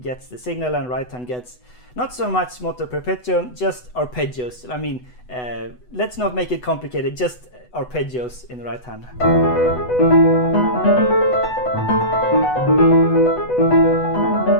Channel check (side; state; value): right; late; 8.0 ms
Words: gets the signal and right hand gets not so much moto perpetuo, just arpeggios. I mean, let's not make it complicated, just arpeggios in the right hand.